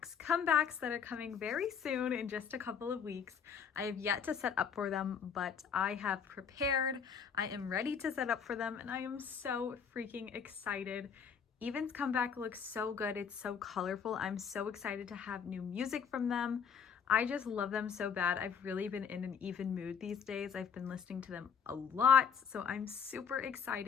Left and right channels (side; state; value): right; quieter; 6.9 dB